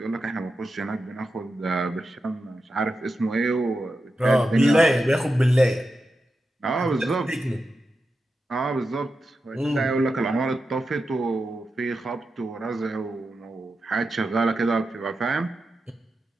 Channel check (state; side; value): normal; both; correlation 0.90